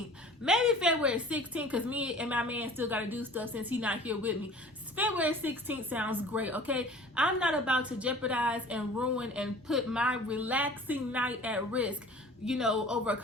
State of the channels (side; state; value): both; normal; correlation 0.45